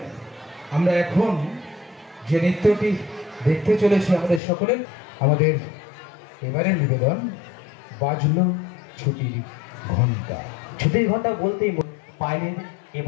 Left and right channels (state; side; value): drops out; right; at 4.4 s